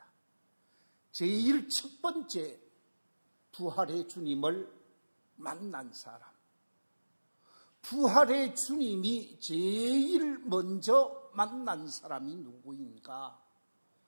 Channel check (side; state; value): both; inverted; correlation -1.00